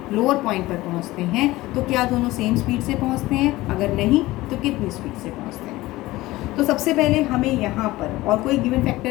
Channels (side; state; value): right; quieter; 18.4 dB